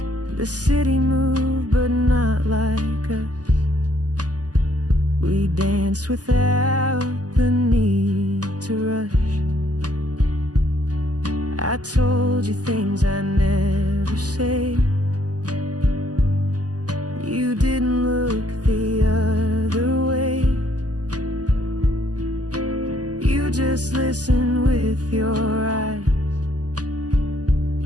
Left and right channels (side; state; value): left; late; 0.68 ms